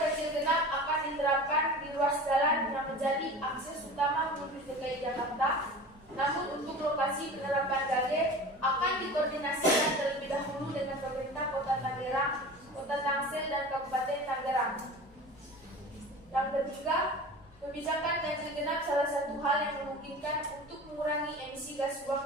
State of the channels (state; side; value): normal; both; correlation 0.36